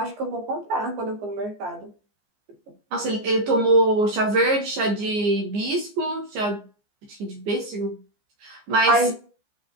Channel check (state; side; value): late; left; 15 ms